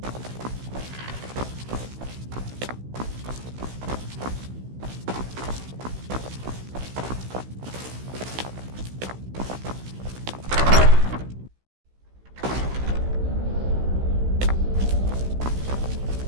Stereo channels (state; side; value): late; left; 16 ms